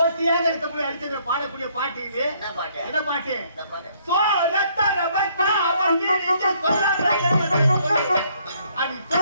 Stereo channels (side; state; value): both; inverted; correlation -0.66